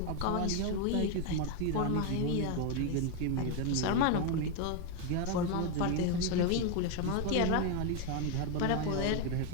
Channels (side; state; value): both; different; correlation 0.01